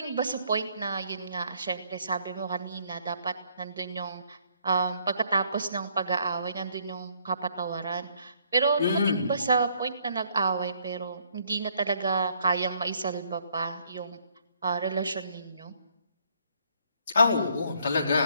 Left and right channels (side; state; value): both; inverted; correlation -0.66